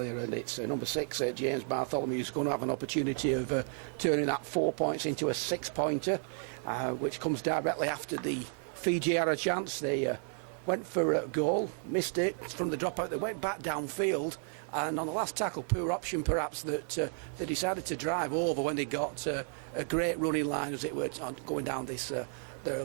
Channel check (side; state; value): left; silent; 56 dB below the other